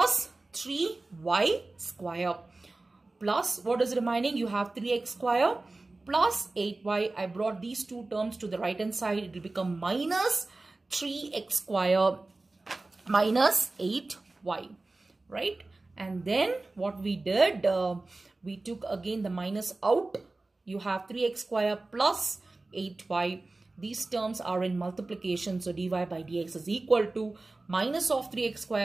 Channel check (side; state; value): left; quieter; 3.2 dB